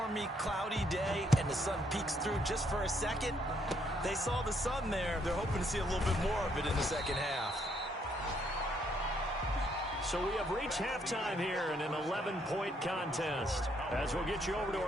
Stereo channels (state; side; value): normal; both; correlation 0.71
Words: cloudy day, and the sun peeks through just for a second. They saw the sun there. They're hoping to see a little bit more of it in the second half. So we have reached halftime here in an 11-point contest. As we'll get you over to